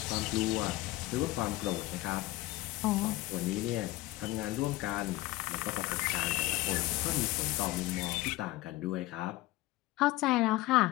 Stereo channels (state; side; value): quieter; right; 18.2 dB